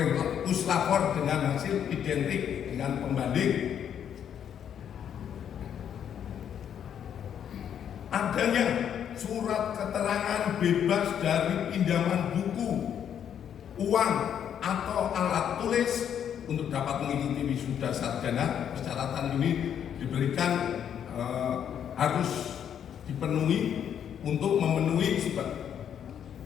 puslapor dengan hasil identik dengan pembanding. Adanya surat keterangan bebas dari pinjaman buku, uang, atau alat tulis untuk dapat mengikuti wisuda sarjana. Persyaratan ini diberikan harus dipenuhi untuk memenuhi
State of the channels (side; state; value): right; quieter; 9.0 dB